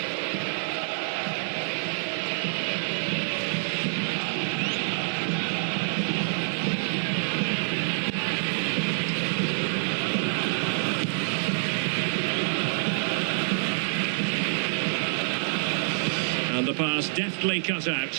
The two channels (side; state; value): left; silent; digital silence